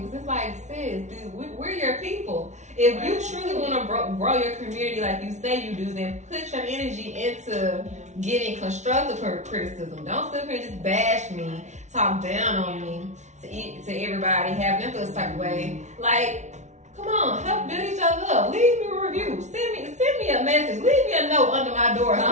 because it's like, sis, dude, we're your people. If you truly want to grow your community like you say you do, then put your energy into getting constructive criticism. Don't sit here and just bash me, talk down on me to everybody, have them feel this type of way. Like, come on, help build each other up. Leave me a review. Send me a message. Leave me a note under my door or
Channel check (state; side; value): late; left; 0.34 ms